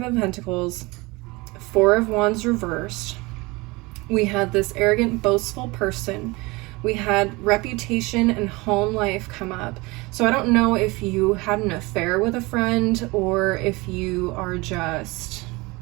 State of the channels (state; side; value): quieter; left; 24.1 dB